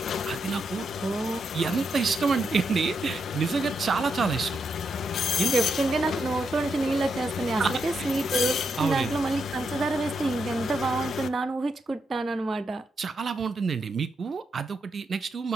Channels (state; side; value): normal; both; correlation 0.82